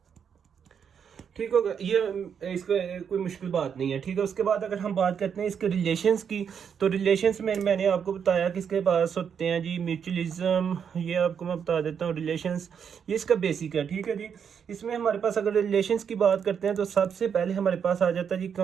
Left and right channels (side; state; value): left; quieter; 7.4 dB